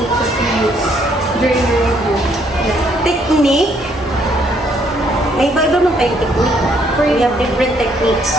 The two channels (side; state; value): both; normal; correlation 0.68